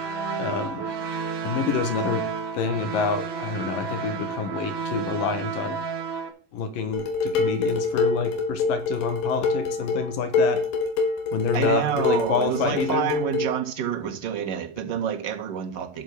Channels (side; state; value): right; late; 11 ms